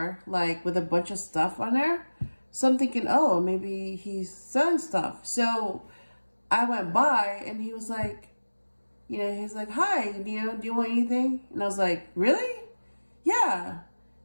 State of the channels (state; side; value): inverted; both; correlation -1.00